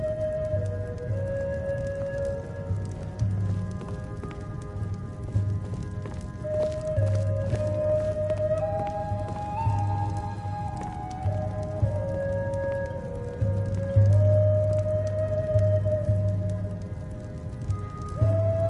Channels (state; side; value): identical; both; correlation 1.00